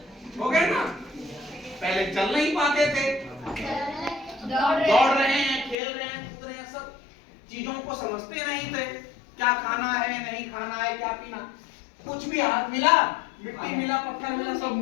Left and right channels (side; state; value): right; drops out; at 5.8 s